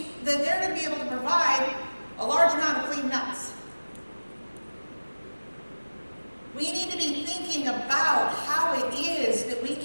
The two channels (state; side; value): inverted; both; correlation -1.00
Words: that they're going to be able to provide a large amount of clean nuts. We need to be thinking about how it is that we